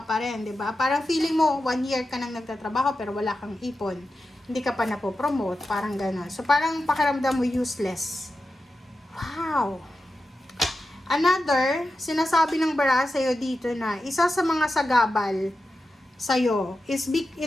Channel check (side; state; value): both; normal; correlation 0.91